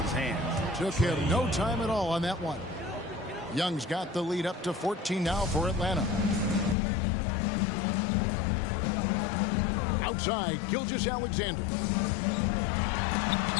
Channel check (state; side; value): drops out; right; at 6.8 s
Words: hands. Took him no time at all on that one. Young's got the lead up to 14 now for Atlanta. Outside, Gilgeous-Alexander.